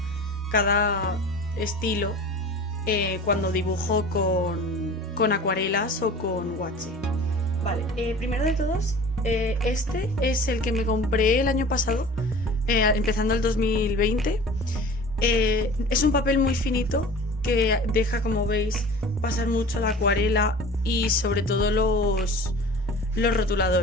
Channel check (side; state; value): both; normal; correlation 0.41